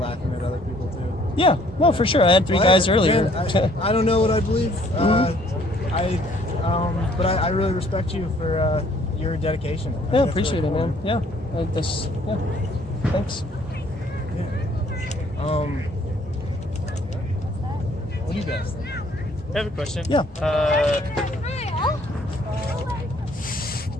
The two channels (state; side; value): normal; both; correlation 0.61